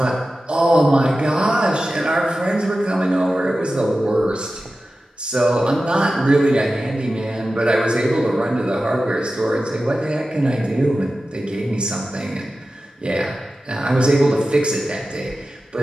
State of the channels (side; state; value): both; normal; correlation 0.94